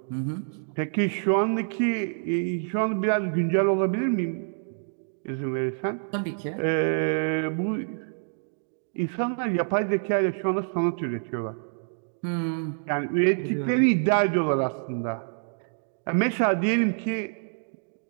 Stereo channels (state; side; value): silent; left; digital silence